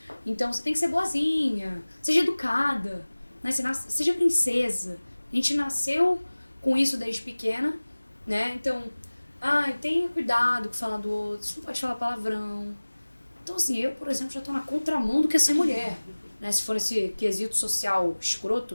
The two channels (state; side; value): inverted; both; correlation -1.00